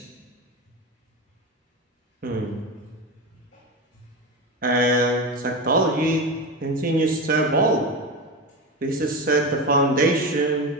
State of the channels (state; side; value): normal; both; correlation 0.21